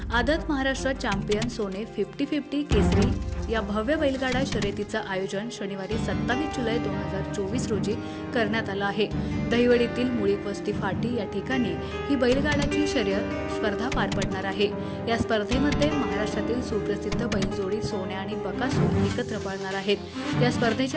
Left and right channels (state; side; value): identical; both; correlation 1.00